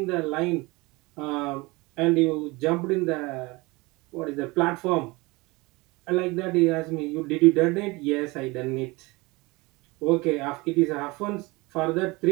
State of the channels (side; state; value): left; quieter; 23.9 dB